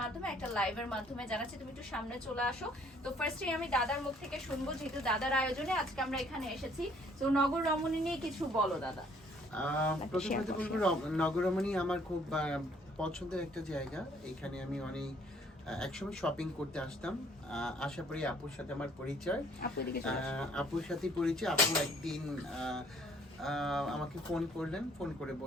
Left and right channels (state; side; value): normal; both; correlation 0.61